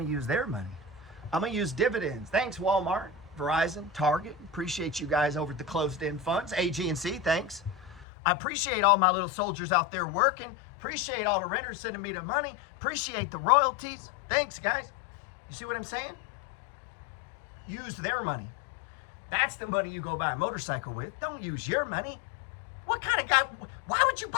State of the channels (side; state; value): right; drops out; at 8.1 s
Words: to use their money. I'm going to use dividends. Thanks, Walmart, Verizon, Target. Appreciate you guys over at the closed-end funds. AG&C, thanks. I appreciate all my little soldiers out there working. Appreciate all the renters sending me the money. Appreciate the royalties. Thanks, guys. You see what I'm saying? Use their money. That's the money you go buy a motorcycle with. Don't use your money. What kind of guy? Why would you